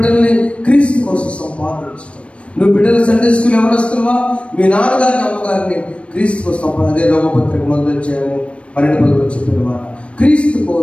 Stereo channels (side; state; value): right; late; 0.061 ms